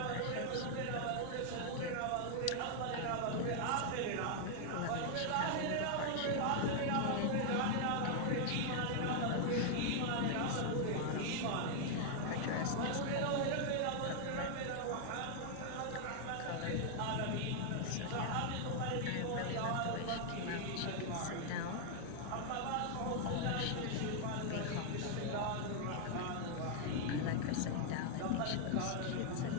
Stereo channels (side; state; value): both; different; correlation 0.00